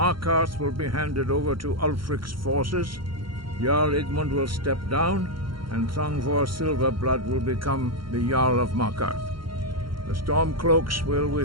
will be handed over to Ulfric's forces, Jarl Igmund will step down, and Thongvor Silverblood will become the Jarl of Markarth. The Stormcloaks will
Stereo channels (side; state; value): left; late; 0.73 ms